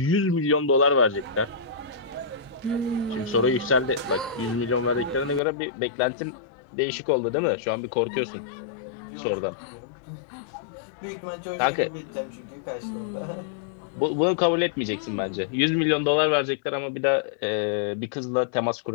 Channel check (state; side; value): drops out; right; at 5.4 s